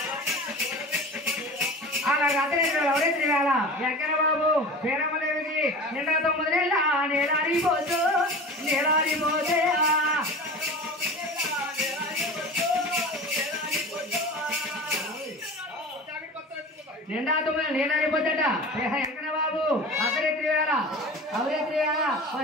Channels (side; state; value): both; normal; correlation 0.35